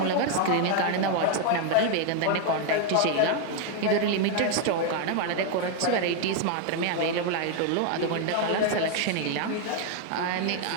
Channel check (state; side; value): different; both; correlation 0.01